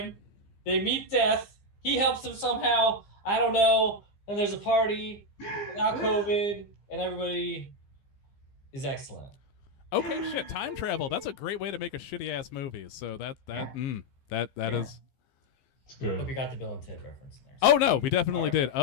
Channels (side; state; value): right; late; 15 ms